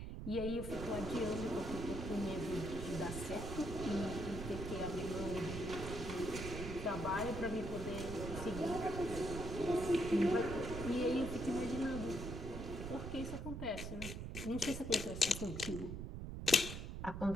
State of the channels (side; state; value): right; noise; rumble, 6 dB below the sound